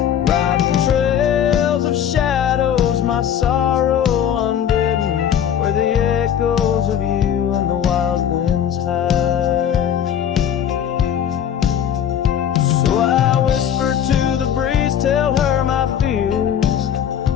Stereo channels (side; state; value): right; quieter; 9.3 dB